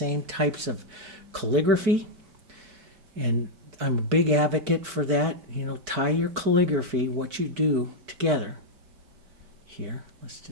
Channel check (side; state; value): left; late; 5.1 ms